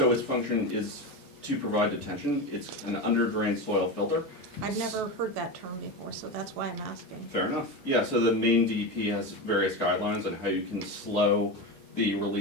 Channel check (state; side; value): normal; both; correlation 0.20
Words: its function is to provide detention. It's an under-drained soil filter. I've never heard that term before, so that's why I'm asking. Fair enough. Yeah, so the main DEP has various guidelines on how you can slow the